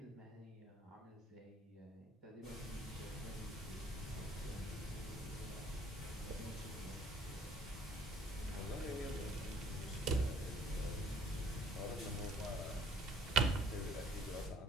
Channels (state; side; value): normal; both; correlation 0.61